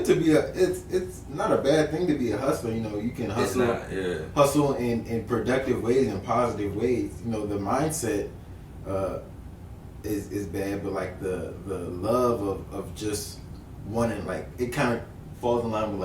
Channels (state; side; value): identical; both; correlation 1.00